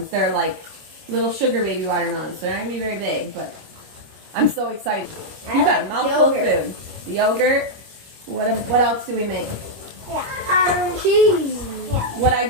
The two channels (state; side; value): late; left; 25 ms